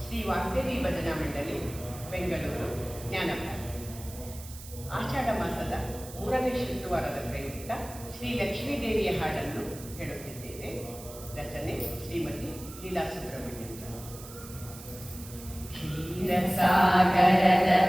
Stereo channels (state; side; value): noise; right; hiss, 15 dB below the sound